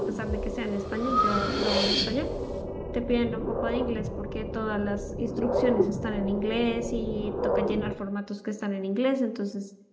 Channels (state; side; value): identical; both; correlation 1.00